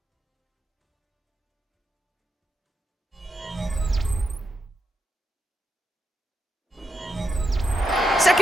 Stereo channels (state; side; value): normal; both; correlation 0.85